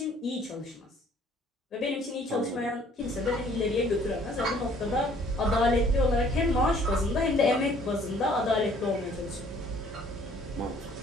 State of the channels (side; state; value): both; normal; correlation 0.58